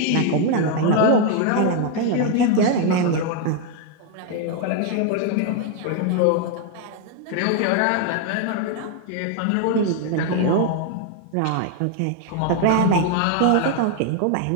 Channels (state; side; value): different; both; correlation 0.00